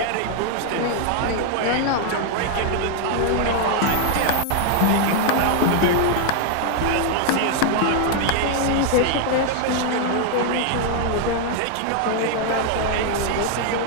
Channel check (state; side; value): different; both; correlation 0.00